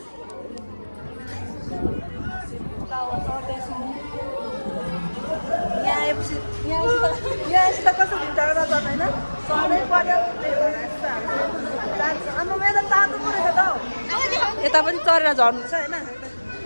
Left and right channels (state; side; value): inverted; both; correlation -1.00